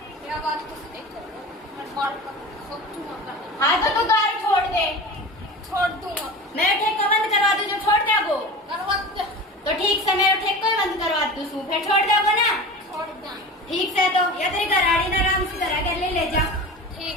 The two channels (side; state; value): both; normal; correlation 0.33